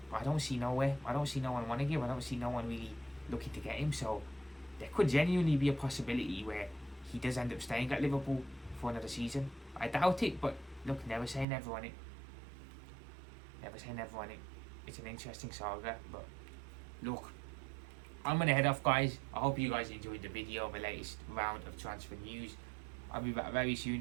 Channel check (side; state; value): left; drops out; at 11.5 s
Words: I don't see nowhere. I don't see no one wanting him. I don't see no one really looking to get him. So there could genuinely be a possibility where he does end up staying at Liverpool for another season. I doubt it, but look, never say never on it. Never say never on it. It's an interesting saga, but look, I'm going to head off, guys. I hope you guys enjoyed the video of the latest round of transfer news. I'll be back very